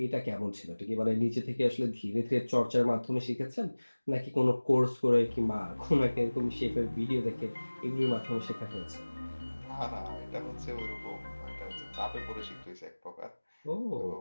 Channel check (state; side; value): inverted; both; correlation -1.00